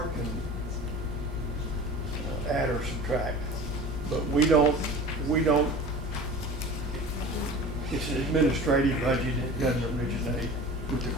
add or subtract. But we don't, it's an administrative budget, it doesn't originate with the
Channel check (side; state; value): both; normal; correlation 0.38